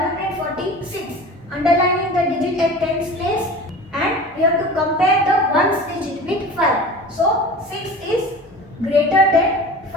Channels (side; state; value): both; normal; correlation 0.37